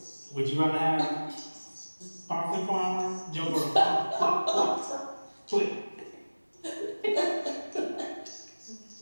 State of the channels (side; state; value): both; inverted; correlation -1.00